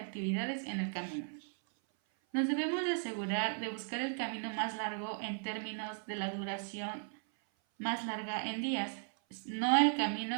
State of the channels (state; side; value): silent; left; 53 dB below the other